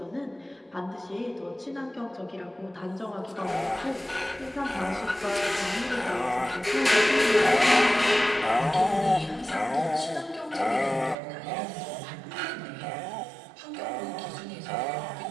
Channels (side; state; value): left; drops out; at 11.2 s